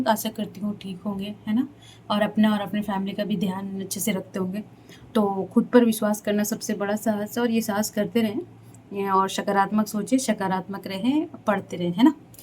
आशा करती हूँ ठीक होंगे, है ना? और अपना और अपने फैमिली का भी ध्यान अच्छे से रखते होंगे। तो खुद पर विश्वास करना सबसे बड़ा साहस है और ये साहस करते रहें। और सकारात्मक सोचें, सकारात्मक रहें, पढ़ते रहें, है ना?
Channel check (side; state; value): both; identical; correlation 1.00